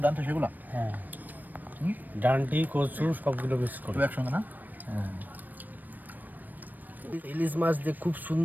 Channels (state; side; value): late; left; 0.087 ms